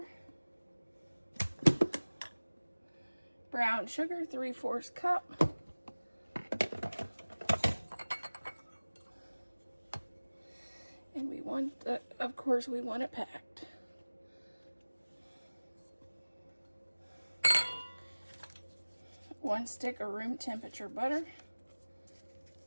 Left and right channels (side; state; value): both; inverted; correlation -1.00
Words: brown sugar, 3/4 cup, and we want of course we want it packed. One stick of room temperature butter,